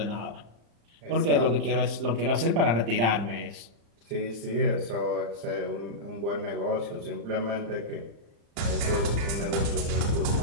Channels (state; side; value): late; left; 35 ms